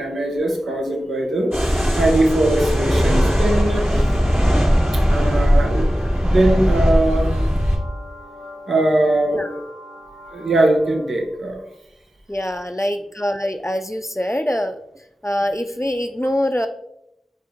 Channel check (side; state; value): both; normal; correlation 0.94